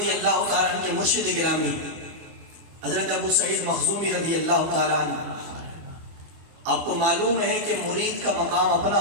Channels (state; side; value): late; left; 24 ms